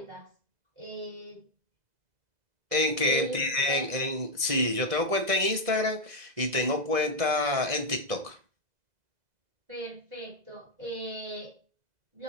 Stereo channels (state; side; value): late; left; 2.0 ms